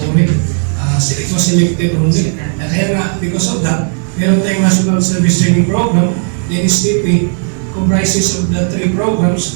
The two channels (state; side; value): silent; left; 55 dB below the other